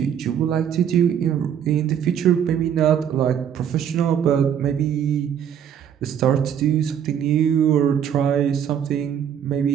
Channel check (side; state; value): left; quieter; 8.9 dB